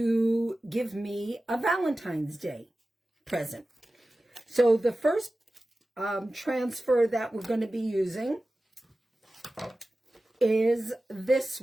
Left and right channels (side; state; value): both; normal; correlation 0.95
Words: give me a Valentine's Day present. So the first transfer that we're going to be using is this